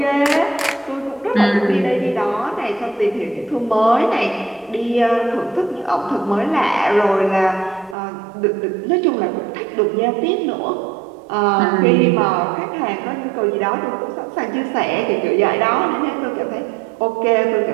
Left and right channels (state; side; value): drops out; left; at 8.0 s